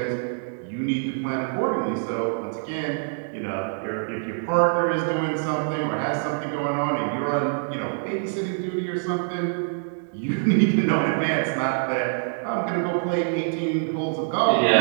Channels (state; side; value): silent; left; digital silence